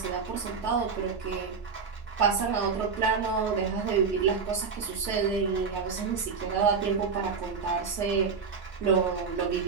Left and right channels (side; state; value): left; quieter; 5.5 dB